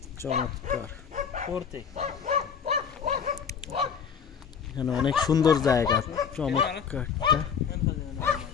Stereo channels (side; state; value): right; quieter; 7.0 dB